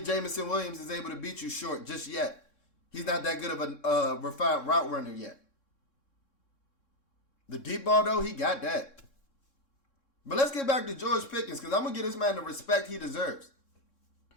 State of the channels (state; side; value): late; right; 3.7 ms